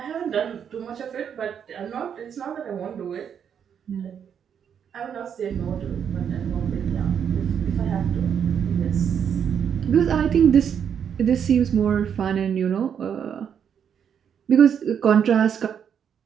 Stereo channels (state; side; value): quieter; left; 8.0 dB